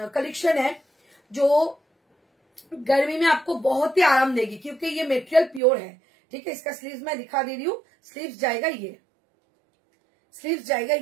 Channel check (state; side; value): drops out; left; at 5.6 s